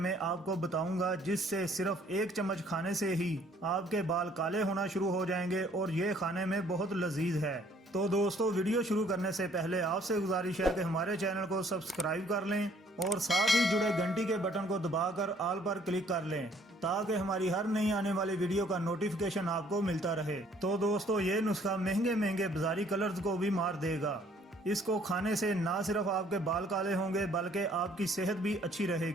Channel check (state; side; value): normal; both; correlation 0.61